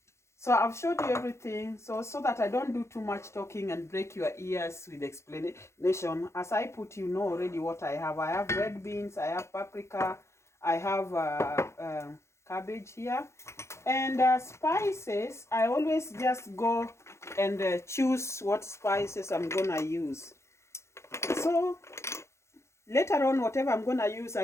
So I've showed you everything, so that I don't do too much talking and break your ears with explanation. As I put, you know already what I have. I have red beans, I have paprika, I have cabbage here. And spices, I always just go and choose what spices I'm gonna use. So later on, whatever I'm gonna use,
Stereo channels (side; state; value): right; late; 0.13 ms